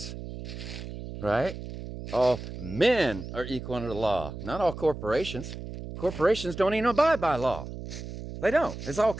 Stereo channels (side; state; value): right; noise; hum, 10 dB below the sound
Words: right? All men are equal under the law, not all corporations. Corporations don't even abide by law. They don't. It's all